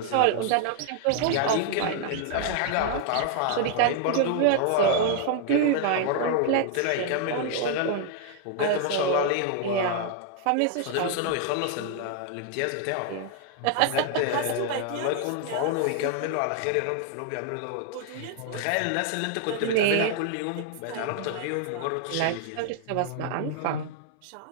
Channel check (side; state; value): both; different; correlation 0.00